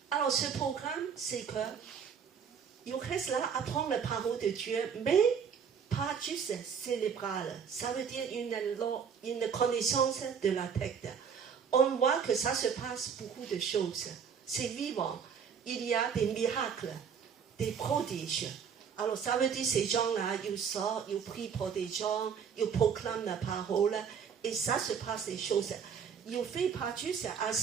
Alors, ce programme, c'est que il reste là à apprendre la parole de Dieu, mais pas juste cérébrale. Ça veut dire une connaissance de la tête. On voit que ça se passe beaucoup de choses. C'est vivant. Il y a des miracles, des prodiges. Alors, ça veut dire ces gens-là, ils sortent, ils prient pour des gens, ils proclament la parole, et ça se passe des choses. Ils ne font pas juste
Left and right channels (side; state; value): left; quieter; 7.0 dB